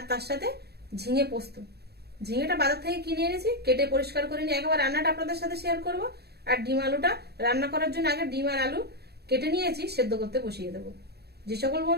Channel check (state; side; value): late; left; 0.47 ms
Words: তার সাথে ঝিঙে পোস্ত। ঝিঙেটা বাজার থেকে কিনে এনেছি, কেটে পরিষ্কার করে নিয়ে একবার রান্নাটা আপনাদের সাথে শেয়ার করব। আর ডিম আলুটা রান্না করার জন্য আগে ডিম আর আলু কেটে নিয়েছি, সেদ্ধ করতে বসিয়ে দেবো। যে সকল